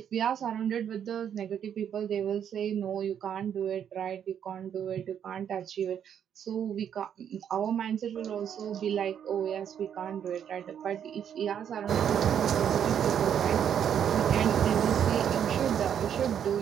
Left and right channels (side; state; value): left; quieter; 8.9 dB